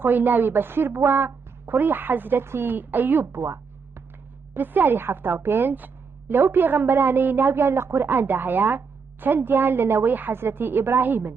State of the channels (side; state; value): left; quieter; 5.4 dB